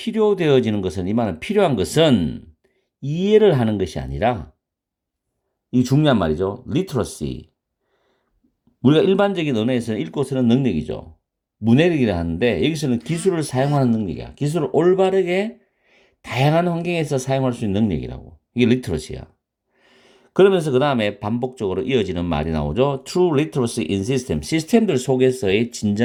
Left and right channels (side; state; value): both; identical; correlation 1.00